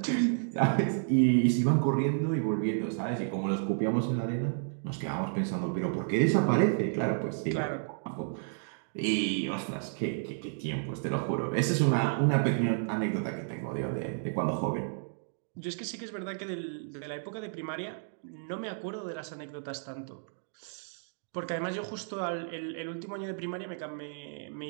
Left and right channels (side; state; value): left; silent; digital silence